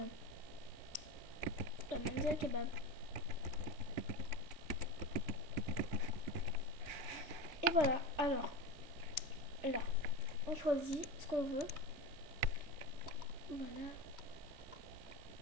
la Manzil Kebab. Et voilà, alors là, on choisit ce qu'on veut. Voilà.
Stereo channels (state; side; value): late; left; 3.6 ms